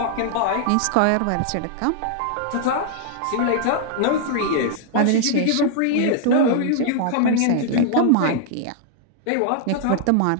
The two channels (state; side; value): different; both; correlation 0.00